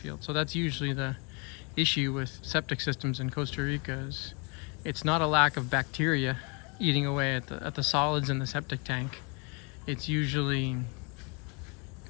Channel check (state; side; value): quieter; right; 32.8 dB